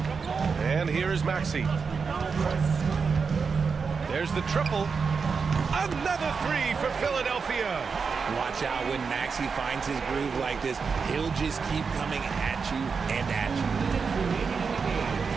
And here is Maxey. There's the triple. Another three for Philadelphia. Watch out when Maxey finds his groove like this. He'll just keep coming at you and at you.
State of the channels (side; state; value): left; quieter; 5.4 dB